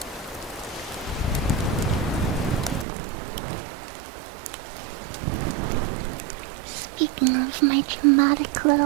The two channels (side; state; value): left; drops out; at 2.9 s